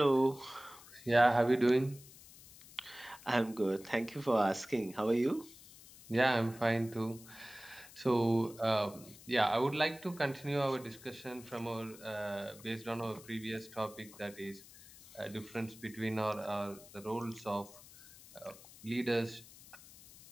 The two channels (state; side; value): noise; left; hiss, 20 dB below the sound